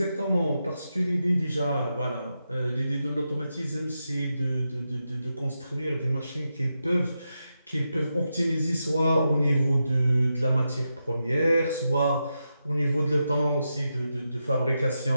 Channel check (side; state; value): both; inverted; correlation -0.87